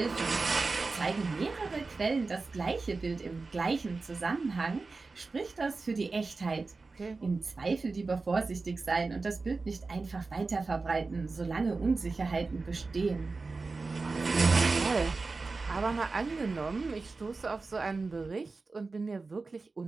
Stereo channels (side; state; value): left; quieter; 3.9 dB